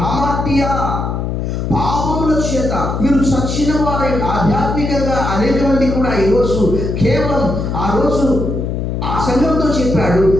హామాటియా పాపముల చేత మీరు చచ్చిన వారై ఆధ్యాత్మికంగా అనేక మంది కూడా ఈరోజు కేవలం ఆ రోజు ఆ సంఘంతో చెప్పాడు,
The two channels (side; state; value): left; noise; hum, 2 dB below the sound